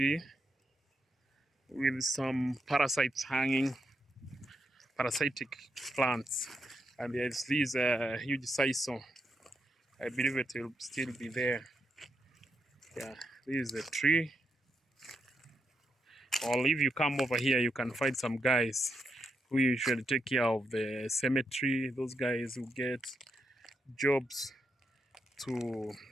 with some parasites hanging, parasitic plants, and there's this huge sisal. I believe it will still be there. Yeah, this is the tree. Or if you come over here, you can find some guys who usually take care of the cemetery. Those guys who get jobs to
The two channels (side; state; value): both; normal; correlation 0.82